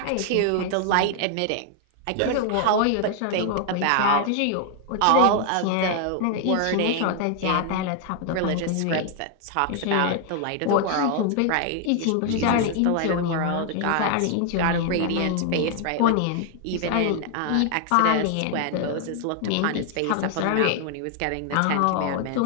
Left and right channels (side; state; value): both; different; correlation 0.00